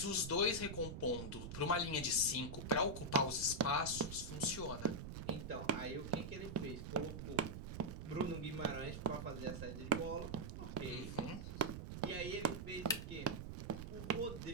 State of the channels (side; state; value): right; noise; rumble, 7 dB below the sound